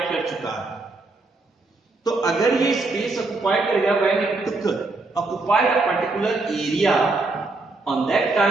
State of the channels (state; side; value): quieter; left; 3.4 dB